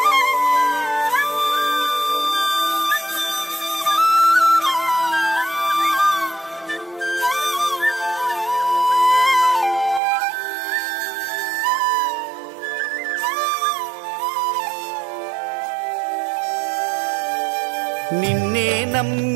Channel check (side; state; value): left; drops out; at 10.0 s